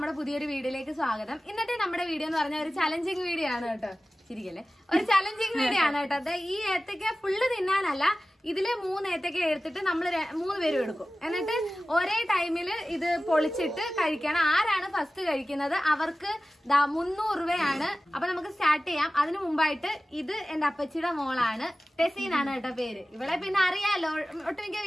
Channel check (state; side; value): normal; both; correlation 0.96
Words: പുതിയൊരു വീഡിയോയിലേക്ക് സ്വാഗതം. ഇന്നത്തെ നമ്മുടെ വീഡിയോ എന്ന് പറഞ്ഞ ഒരു ചലഞ്ചിങ് വീഡിയോ ആണ് കേട്ടോ. ശരിക്കല്ലേ, ഒരു ചലഞ്ചിങ് വീഡിയോ ആണ് കേട്ടോ. അത് ഈ ഏത്തക്ക ഫുള്ള് തിന്നാനല്ല, ഇതില് 3 ഏത്തക്ക എടുത്തിട്ട് നമ്മൾ 3 പേരും എടുക്കും. എന്നിട്ട് ഒരേ ടൈമില് ഇത് പൊളിച്ചിട്ട് കഴിക്കണം. ആരാണ് ഫസ്റ്റ് കഴിക്കുന്നത് അവർക്ക് 300 രൂപയാണ്. അപ്പൊ നമുക്ക് സ്റ്റാർട്ട് ചെയ്യാം. അതിനു മുമ്പായിട്ട് ഇത് എന്റെ അപ്പച്ചിയുടെ മോളാണ്, ടെസീനാണ് കേട്ടോ പേര്. ഇവളെ പിന്നെ അറിയാലോ, ഒട്ടുമിക്ക